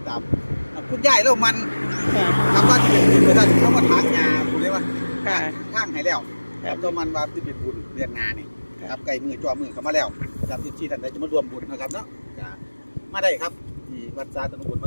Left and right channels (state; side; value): inverted; both; correlation -1.00